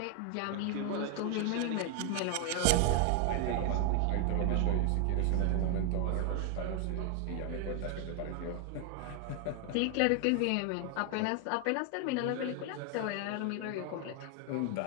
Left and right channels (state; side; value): different; both; correlation 0.00